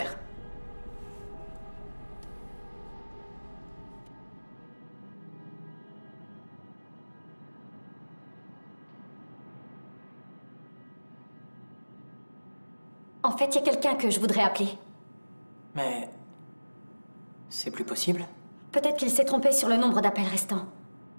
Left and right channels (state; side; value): inverted; both; correlation -1.00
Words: En fait, il y a quelqu'un que je voudrais appeler. Mais... c'est plus possible? Peut-être qu'il s'est trompé sur le nombre d'appels restants.